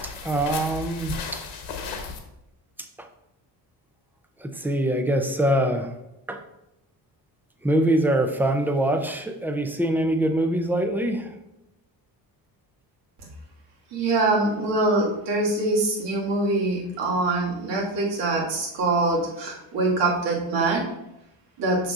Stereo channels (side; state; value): both; normal; correlation 0.38